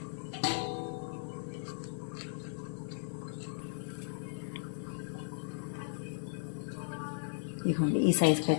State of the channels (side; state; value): right; silent; digital silence